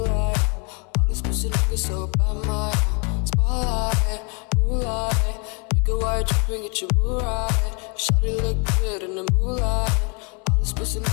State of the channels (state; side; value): quieter; right; 34.7 dB